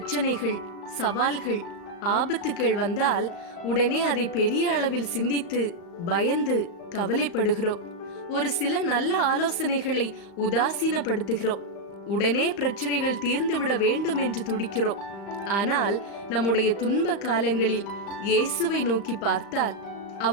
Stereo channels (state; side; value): late; right; 35 ms